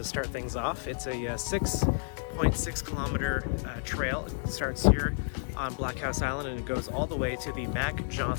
start things off. It's a 6.6 kilometer trail. It starts here on Blockhouse Island and it goes all the way to the Mac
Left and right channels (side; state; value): right; silent; digital silence